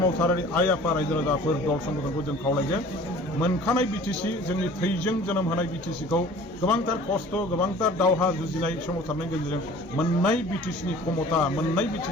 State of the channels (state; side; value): normal; both; correlation 0.47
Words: आइ आफा रायजो राजाफोर दल संगठनखौ जों खावलायगोन मोनखानाय बिटिसि जोंनि थैजों जोनोम होनाय बिटिसिखौ गोबांथार खस्थ' गोबांथार दावहा जुजिनाय सोमावसारनायनि गेजेरजों मोननाय बिटिसिनि क्षमता मोननाय